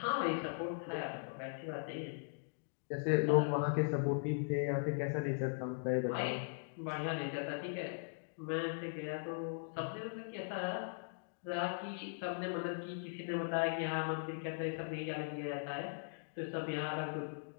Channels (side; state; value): right; silent; digital silence